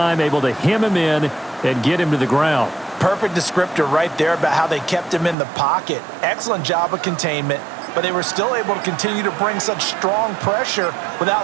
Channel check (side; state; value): left; drops out; at 5.4 s